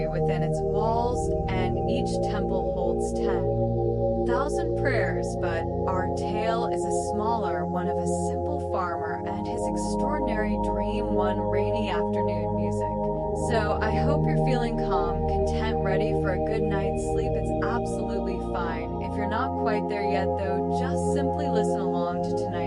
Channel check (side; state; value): both; identical; correlation 1.00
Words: within its walls, and each temple holds 10,000 prayers. But our tale is a smaller one of a simple farmer and his extraordinary dream one rainy afternoon. Music. So I hope you're feeling calm, content, ready for a good night's sleep. It's absolutely fine. If you're not quite there yet though, just simply listen along to